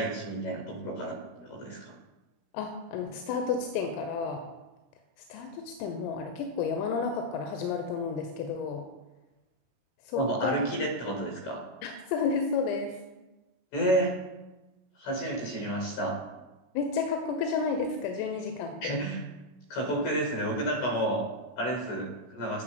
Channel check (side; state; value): right; late; 16 ms